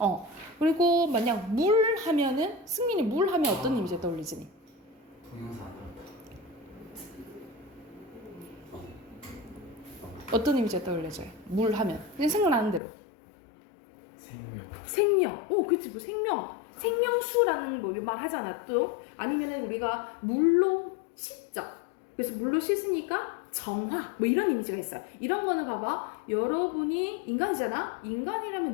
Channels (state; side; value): drops out; right; at 12.8 s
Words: 그리고 만약 물 하면은, 승민이 물 하면 어떤 이미지가 떠올리지? 동영상. 어떤 이미지가 떠올려져요? 물 하면. 그냥 생각나는 대로. 생명. 그치, 뭐 생명수라는 뭐 말 하잖아, 또. 아니면은 우리가 물로 씻죠. 그래서 물로 씻으니까 정화, 뭐 이런 이미지가 있어요. 이런 거는 봐봐. 여러분이 인간이잖아?